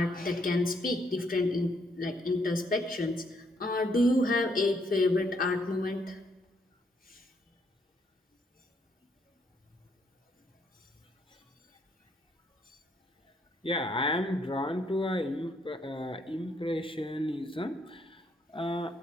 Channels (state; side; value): normal; both; correlation 0.72